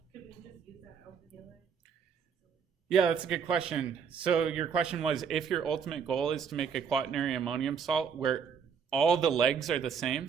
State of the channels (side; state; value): left; quieter; 6.7 dB